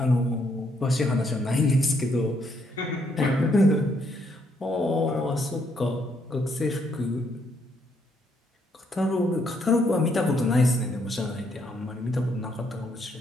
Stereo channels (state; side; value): normal; both; correlation 0.73